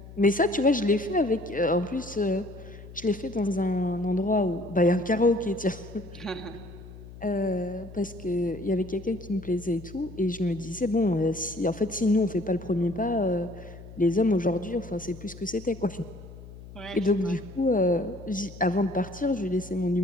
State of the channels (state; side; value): noise; left; hum, 16 dB below the sound